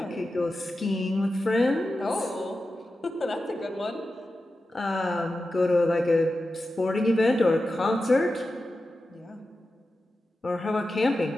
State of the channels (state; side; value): normal; both; correlation 0.92